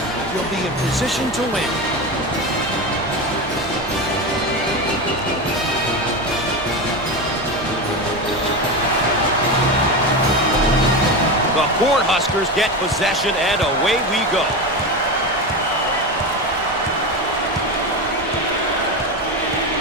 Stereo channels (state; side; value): normal; both; correlation 0.19